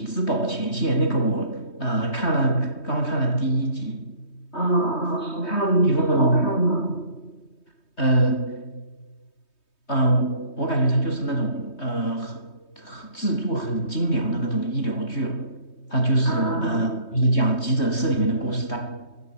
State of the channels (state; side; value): late; right; 3.2 ms